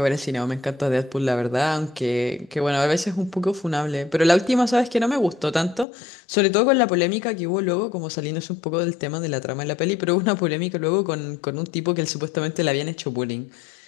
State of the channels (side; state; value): right; drops out; at 5.9 s